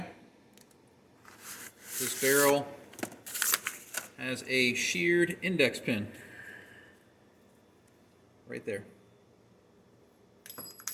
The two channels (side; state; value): both; identical; correlation 1.00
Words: This barrel has a sheared index pin right there.